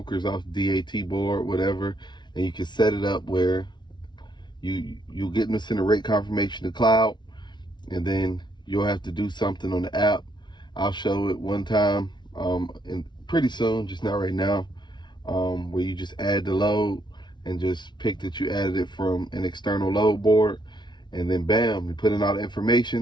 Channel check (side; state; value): right; late; 0.21 ms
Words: off DAT board, whatever, and you can set it up where you'll get them to send a rate confirmation to Cloud, and then you'll have to do something on the app. I'll show it one time, and pretty soon, just not right now, where you just add the load and just pick that you added it from an external load board, and then bam, you put in all the